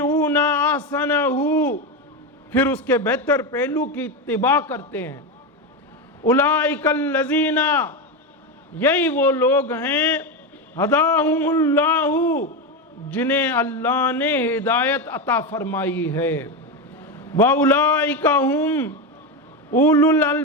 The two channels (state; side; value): normal; both; correlation 0.14